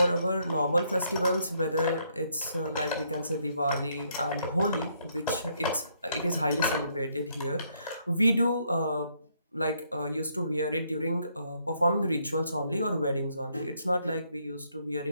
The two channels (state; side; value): inverted; both; correlation -0.72